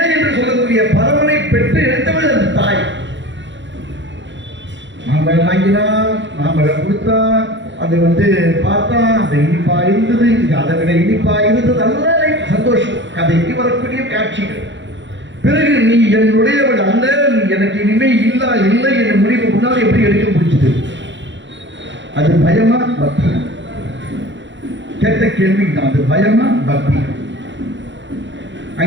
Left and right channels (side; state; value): left; late; 0.54 ms